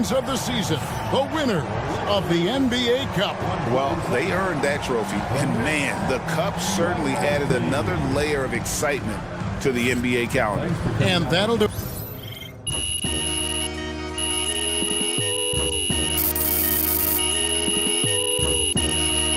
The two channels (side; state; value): both; identical; correlation 1.00